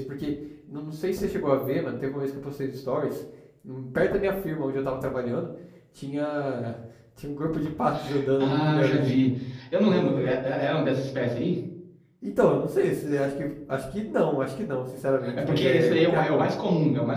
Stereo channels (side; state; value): both; identical; correlation 1.00